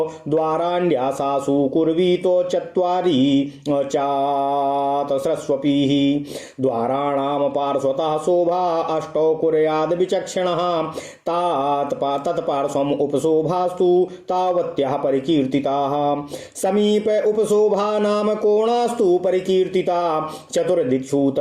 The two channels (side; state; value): both; identical; correlation 1.00